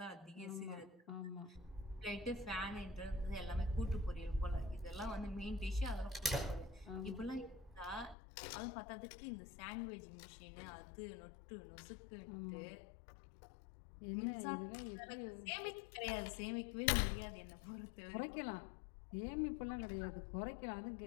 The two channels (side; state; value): right; drops out; at 8.2 s